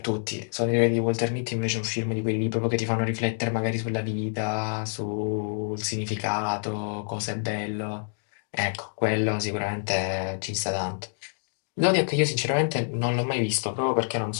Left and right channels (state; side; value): silent; right; digital silence